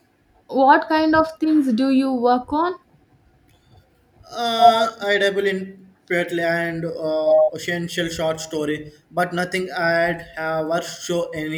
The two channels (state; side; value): identical; both; correlation 1.00